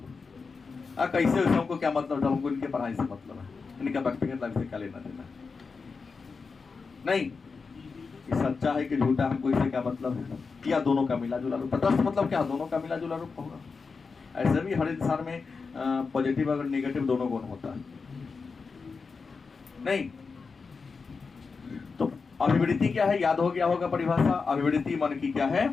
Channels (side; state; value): right; quieter; 4.8 dB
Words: कैसे हमको क्या मतलब, हमको इनके पढ़ाई से मतलब है, इनका व्यक्तिगत लाइफ से क्या लेना देना नहीं। ये सच्चा है कि झूठा, हमको इससे क्या मतलब है, या दोनों का मिला जुला रूप। तटस्थ मतलब क्या, दोनों का मिला जुला रूप होगा। ऐसे भी हर इंसान में पॉजिटिव और नेगेटिव दोनों गुण होता है नहीं। तो अभिवृत्ति क्या है, याद हो गया होगा परिभाषा। अभिवृत्ति मन की क्या है,